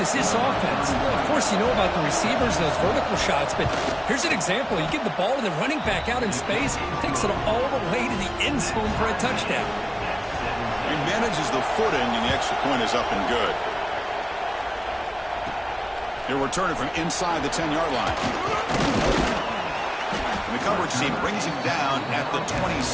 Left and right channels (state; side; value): identical; both; correlation 1.00